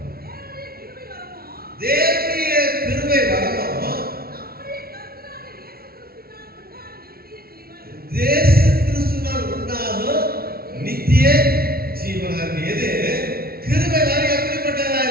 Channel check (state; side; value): late; left; 0.44 ms